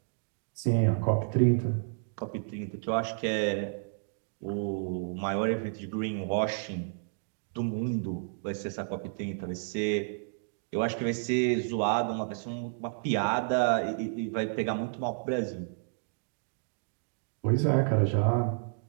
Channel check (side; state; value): left; silent; digital silence